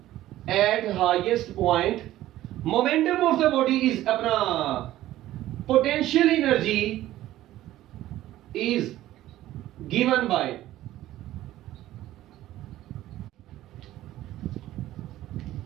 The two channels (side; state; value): left; quieter; 14.5 dB